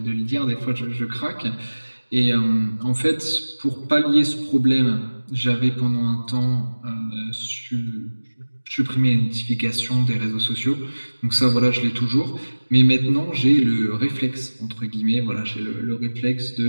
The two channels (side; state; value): both; inverted; correlation -1.00